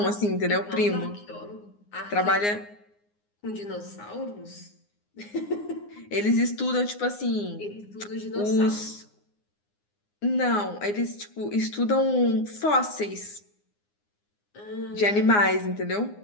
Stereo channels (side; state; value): right; late; 9.7 ms